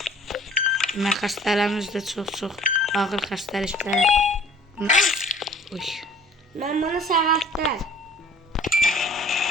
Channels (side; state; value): both; normal; correlation 0.51